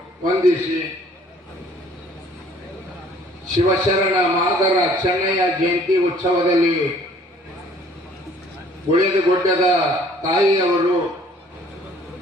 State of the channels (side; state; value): both; normal; correlation 0.57